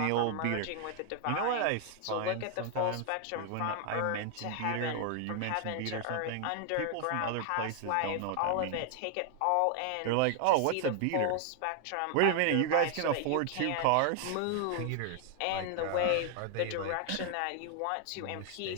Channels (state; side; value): different; both; correlation 0.00